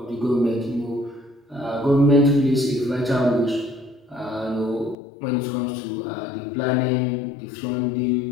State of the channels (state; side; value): drops out; right; at 5.0 s